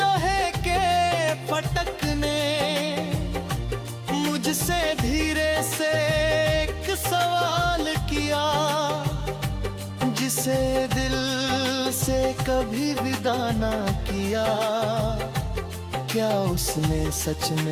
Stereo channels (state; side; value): identical; both; correlation 1.00